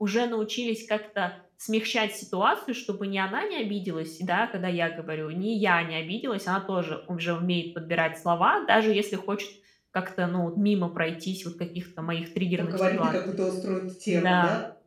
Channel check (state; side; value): identical; both; correlation 1.00